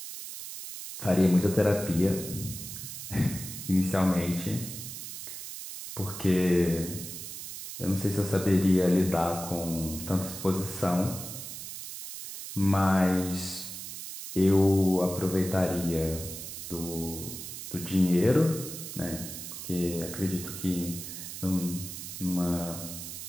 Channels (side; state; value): right; noise; hiss, 9 dB below the sound